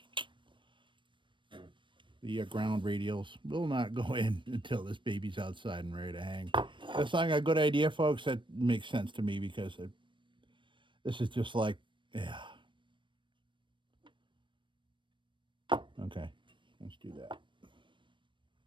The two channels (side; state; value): left; late; 0.24 ms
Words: the ground radials will not go in until this baby's outside and ready to hang. That's not a good idea, folks. That makes sense to me because this is just like, yeah. Okay, let's do that.